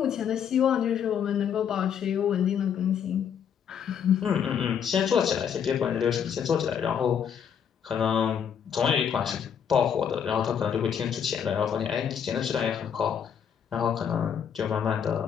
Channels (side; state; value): right; quieter; 8.0 dB